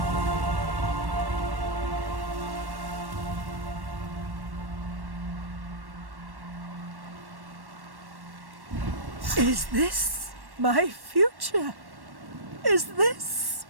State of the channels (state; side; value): late; left; 1.1 ms